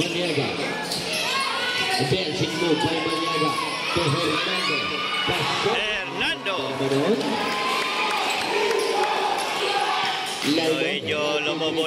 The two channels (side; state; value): both; identical; correlation 1.00